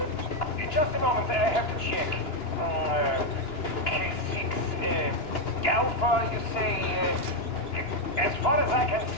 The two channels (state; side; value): late; right; 2.9 ms